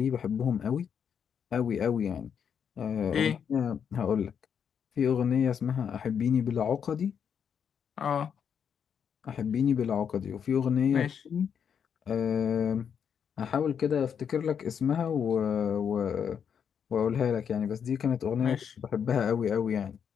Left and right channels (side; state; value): right; quieter; 7.6 dB